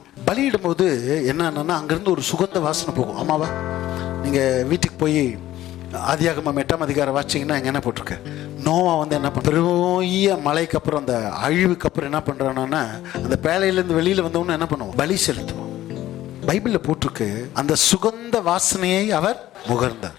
பலியிடும் போது என்னன்னா, அங்கிருந்து ஒரு சுகந்த வாசனை போகும். ஆமாவா? நீங்க வீட்டுக்கு போய் ஆதியாகமம் 8ஆம் அதிகாரம் வாசிச்சீங்கன்னா இங்க என்ன போட்டிருக்கு, நோவா வந்து என்ன பண்ண, பெரிய மழைக்கு அப்புறம் அந்த அழிவுக்கு அப்புறம் என்ன பண்றான்னா, அந்த பேழையிலேருந்து வெளியில வந்தவொன்னு என்ன பண்ணுவோம், பலி செலுத்துவோம். பைபிள்ல போட்டிருக்கு, அந்த சுகந்த வாசனையை அவர் முகர்ந்தார்.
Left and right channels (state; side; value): quieter; right; 14.2 dB